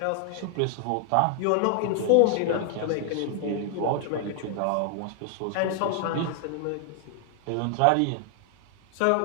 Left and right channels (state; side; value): different; both; correlation 0.00